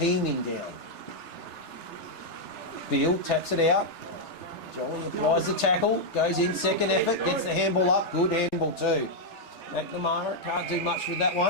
down. Beale taps it out. Jolly applies the tackle, goes in, second effort, gets the handball up, good handball too. McNamara can't do much with that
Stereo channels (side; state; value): right; late; 3.4 ms